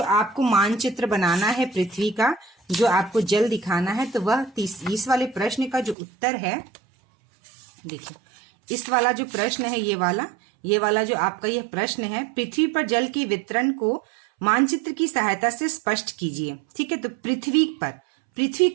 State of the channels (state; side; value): drops out; left; at 6.0 s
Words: आपको मानचित्र बनाना है पृथ्वी का, जो आपको जल दिखाना है, तो वह इस वाले प्रश्न का जो उत्तर है, देखिए इस वाला जो प्रश्न है, ये वाला जो आपका यह प्रश्न है, पृथ्वी पर जल के वितरण को मानचित्र की सहायता से स्पष्ट कीजिए। ठीक है, तो पृथ्वी